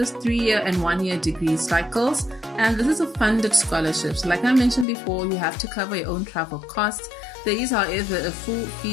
3-year and 1-year degree cycles, and this is a funded scholarship. So like I mentioned before, you have to cover your own travel costs. There is, however, a full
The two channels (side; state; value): right; drops out; at 4.9 s